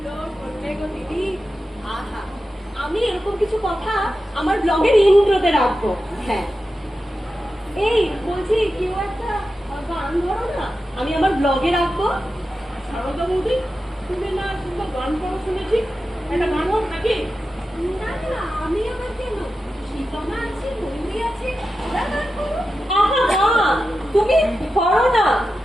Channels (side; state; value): both; normal; correlation 0.91